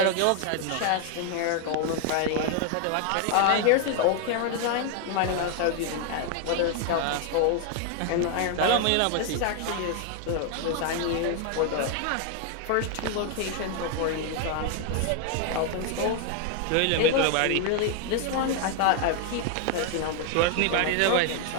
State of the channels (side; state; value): both; different; correlation 0.00